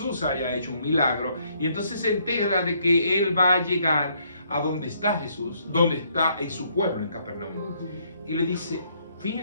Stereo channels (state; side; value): inverted; both; correlation -0.69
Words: haya hecho un milagro. Y entonces se entera de que él va a llegar a donde está Jesús, donde está en su pueblo, en Capernaum. Y le dice,